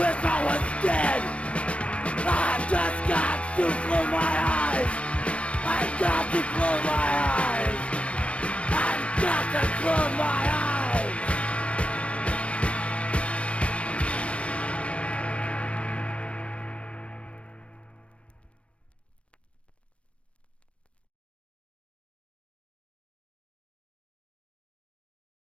I was dead. I've just got to close my eyes. I've got to close my eyes. I've got to close my eyes.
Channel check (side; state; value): right; late; 0.062 ms